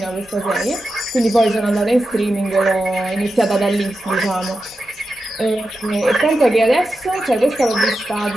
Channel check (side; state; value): both; normal; correlation 0.90